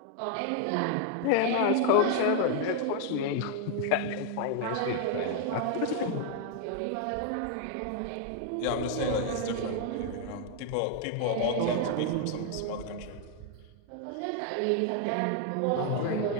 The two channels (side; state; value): both; different; correlation 0.00